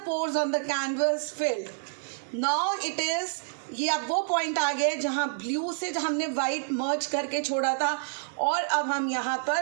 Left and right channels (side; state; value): left; silent; 59 dB below the other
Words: pores on the canvas filled. Now it is, ये अब वो पॉइंट आ गया जहाँ ब्लू से हमने वाइट मर्ज करके छोड़ा था और अब हम यहाँ